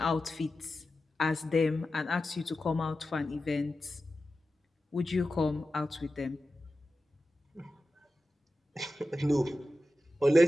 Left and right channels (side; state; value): both; normal; correlation 0.93